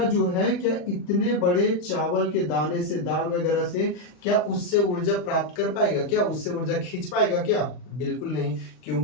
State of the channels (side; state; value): right; late; 39 ms